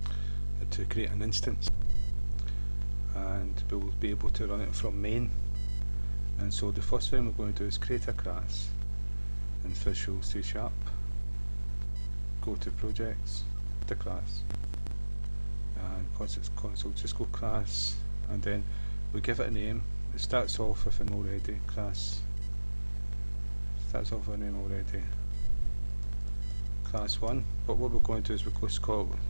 to create an instance, and we'll be able to run it from main. And so the first thing we're going to do is create a class in Visual C#. Go to projects, the class, and because it's console, just go class, and then we give it a name. It starts off with an already class. Starts off with a name already. Class 1. But what we're going to do is we're going to call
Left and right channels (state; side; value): inverted; both; correlation -1.00